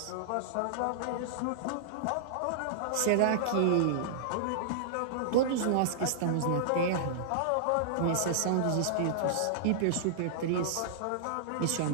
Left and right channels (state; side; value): different; both; correlation -0.02